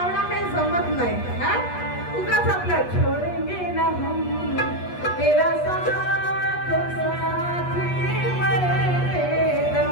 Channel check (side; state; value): right; late; 8.3 ms